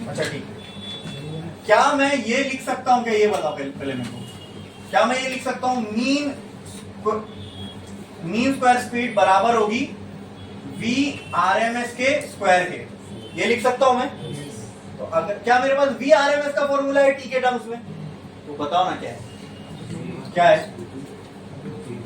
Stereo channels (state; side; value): identical; both; correlation 1.00